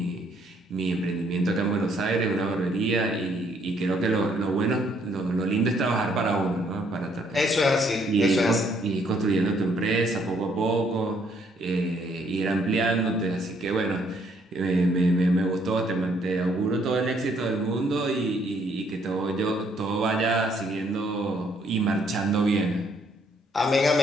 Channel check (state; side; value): normal; both; correlation 0.68